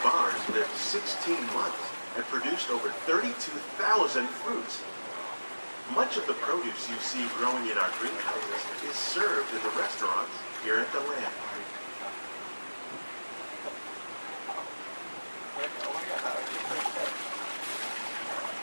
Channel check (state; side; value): inverted; both; correlation -1.00